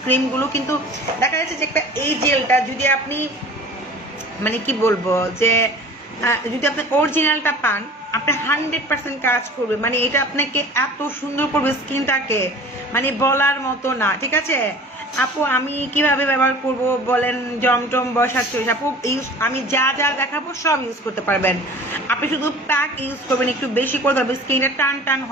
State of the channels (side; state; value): both; normal; correlation 0.43